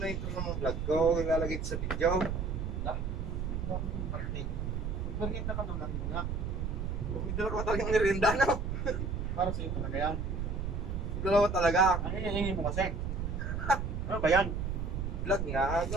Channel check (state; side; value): noise; right; rumble, 2 dB below the sound